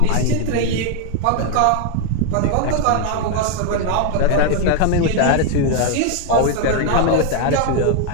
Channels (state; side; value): different; both; correlation 0.01